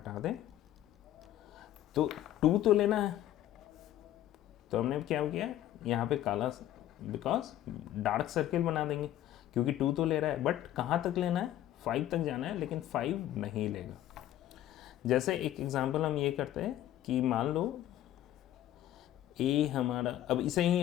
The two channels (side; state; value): right; quieter; 12.8 dB